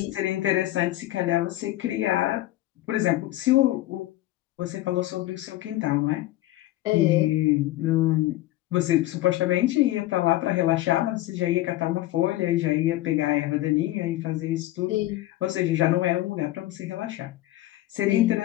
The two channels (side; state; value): right; quieter; 16.0 dB